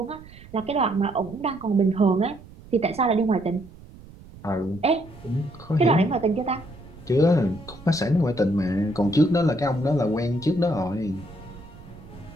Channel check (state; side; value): noise; right; rumble, 19 dB below the sound